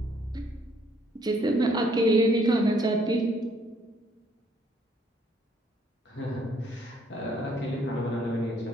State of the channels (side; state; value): both; normal; correlation 0.66